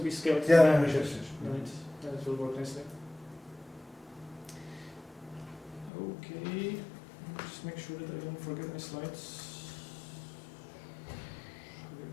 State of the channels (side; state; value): right; drops out; at 5.9 s